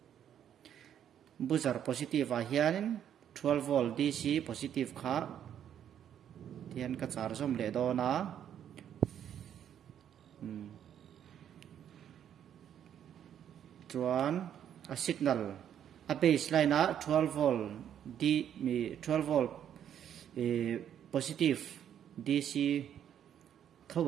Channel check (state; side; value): quieter; left; 9.6 dB